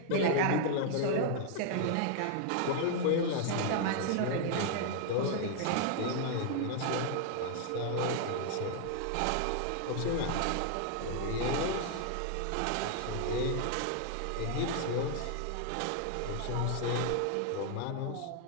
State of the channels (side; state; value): both; different; correlation 0.00